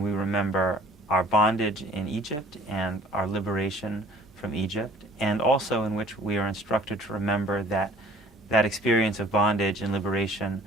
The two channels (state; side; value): normal; both; correlation 0.50